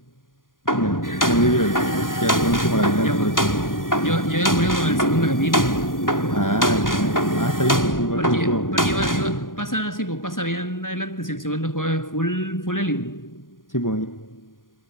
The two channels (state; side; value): late; right; 0.90 ms